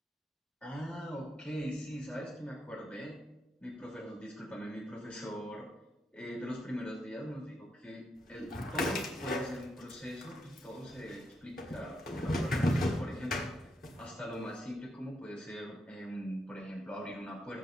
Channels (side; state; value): both; normal; correlation 0.81